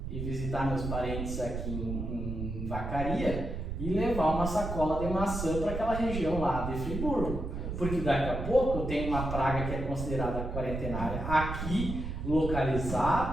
ir visitar meus parentes aqui em Vacaria e levar uma sacola de maçã para aquela região lá de Friburgo, porque daqui a pouco eu tenho uma praga que é considerada quarentenária aqui,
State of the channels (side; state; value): right; noise; rumble, 5 dB below the sound